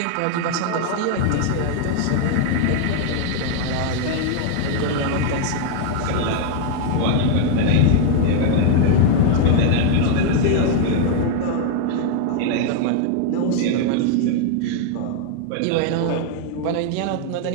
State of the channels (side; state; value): both; different; correlation 0.00